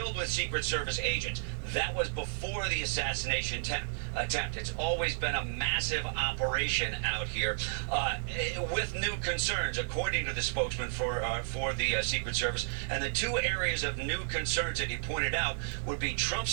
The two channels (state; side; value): silent; left; 56 dB below the other